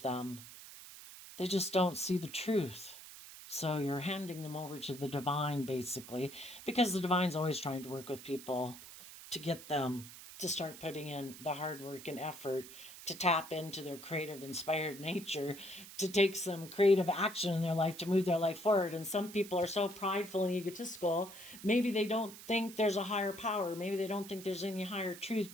them. They just don't see the truth. So you're handing them over to the divine, basically, because the divine's always trying to work with people to get them to start putting in the hard work and effort to tap into their creative, inspired nature, to take some creative action in their life to move their life forward. And some people are so prideful and egotistical, maybe they don't think there's a higher power. Maybe they don't think there's any higher truth,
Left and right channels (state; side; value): noise; right; hiss, 15 dB below the sound